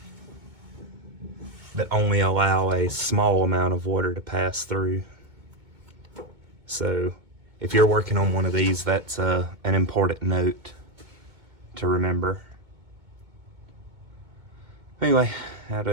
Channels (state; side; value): late; left; 2.2 ms